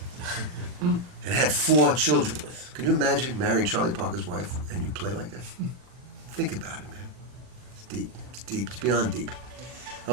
And had 4 children with. Can you imagine marrying Charlie Parker's wife and you play like that? Think about it, man. It's deep. It's deep. It's beyond deep.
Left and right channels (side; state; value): left; late; 40 ms